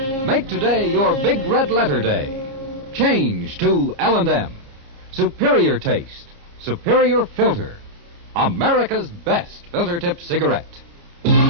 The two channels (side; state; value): left; late; 30 ms